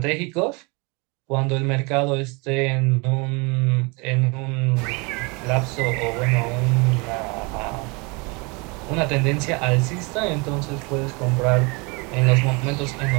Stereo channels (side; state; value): left; quieter; 29.2 dB